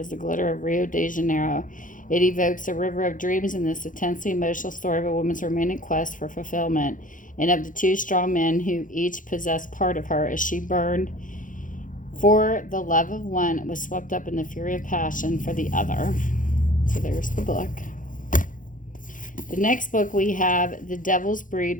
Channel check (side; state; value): right; late; 0.38 ms